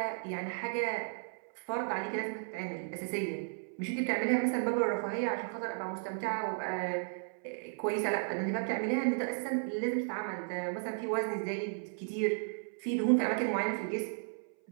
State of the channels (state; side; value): silent; left; 55 dB below the other